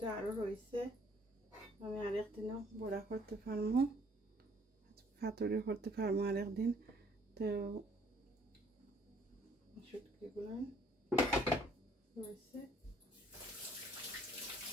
আরো রয়েছে, আমি আরেকদিনও বড়া করতে পারবো, পাতুরি করতে পারবো আরেকদিন। তো শুটকিগুলো রয়েছে,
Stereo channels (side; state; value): both; normal; correlation 0.61